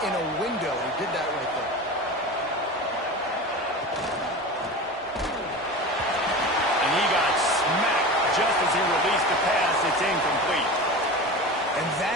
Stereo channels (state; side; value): normal; both; correlation 0.30